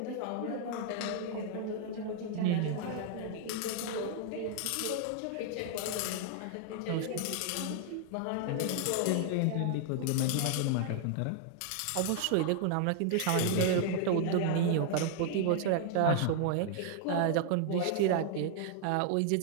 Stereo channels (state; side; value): different; both; correlation 0.00